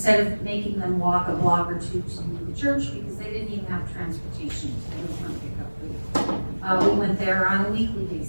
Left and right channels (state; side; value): inverted; both; correlation -1.00